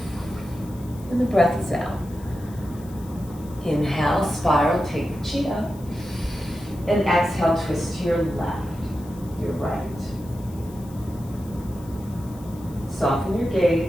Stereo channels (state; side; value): noise; left; hiss, 23 dB below the sound